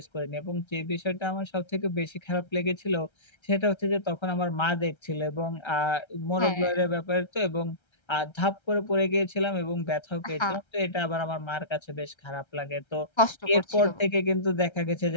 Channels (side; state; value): right; late; 1.3 ms